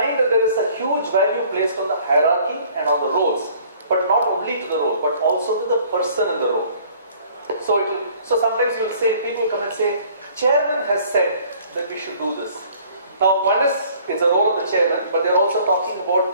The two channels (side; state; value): both; inverted; correlation -0.55